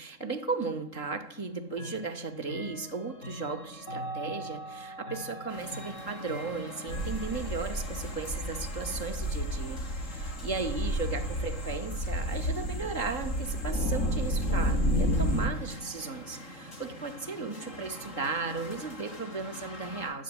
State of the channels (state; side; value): late; right; 3.7 ms